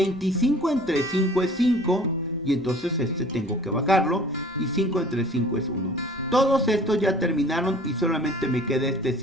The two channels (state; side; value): normal; both; correlation 0.48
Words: entre 5 es 5, y entonces este tengo que bajarlo, y 5 entre 5 es 1. Todos estos ya terminaron y solamente me queda este